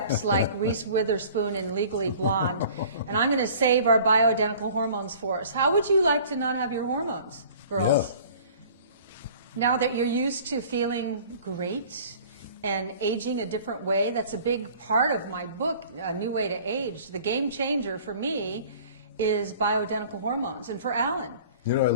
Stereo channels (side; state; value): both; inverted; correlation -0.48